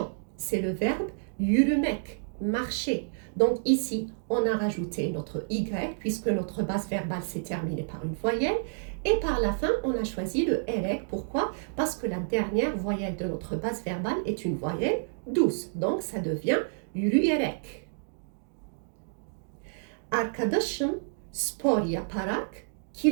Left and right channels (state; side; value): silent; left; digital silence